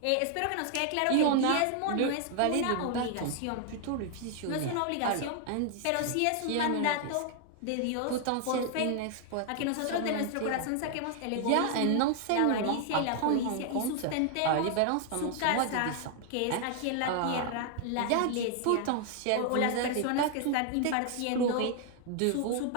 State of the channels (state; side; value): different; both; correlation 0.00